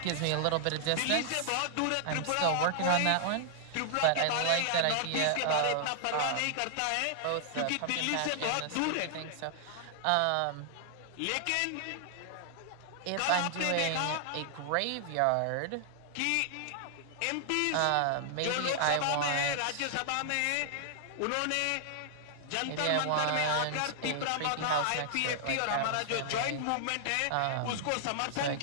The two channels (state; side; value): different; both; correlation -0.01